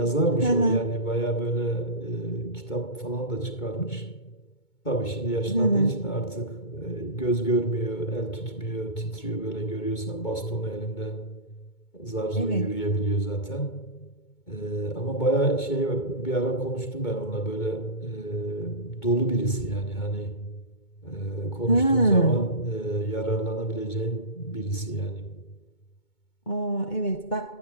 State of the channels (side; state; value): right; late; 2.2 ms